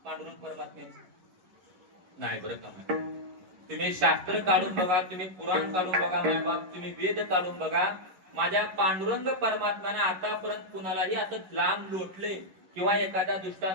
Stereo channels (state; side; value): late; left; 11 ms